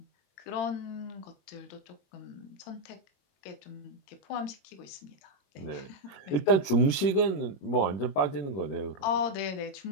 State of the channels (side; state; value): right; late; 21 ms